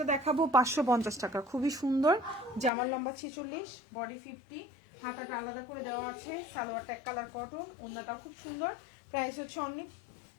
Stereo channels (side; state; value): right; drops out; at 2.7 s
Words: দেখাবো 550 টাকা। খুবই সুন্দর, জামার লম্বা 46, বডি 50, হাতাটা আলাদা করে দেওয়া আছে, সালোয়ারটা এক কালার কটন, ওড়নাটা খুব সুন্দর। প্রাইস হচ্ছে অনলি,